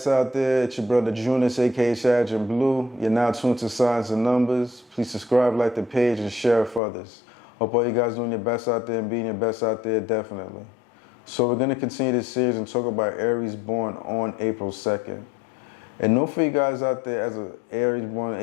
out there. It's your brother Junus, aka Sergeant Blue. You're now tuned to Signs and Numbers. Please subscribe, like the page, and share it for others. Hope all you guys doing your best out there and being your best out there, definitely. So we're going to continue this series and talk about Aries born on April 2nd. And know for you guys out there, as an Aries born on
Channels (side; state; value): right; drops out; at 6.8 s